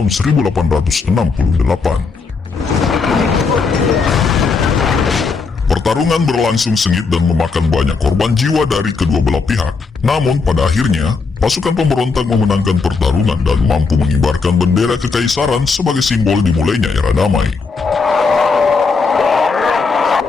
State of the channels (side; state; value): right; quieter; 4.7 dB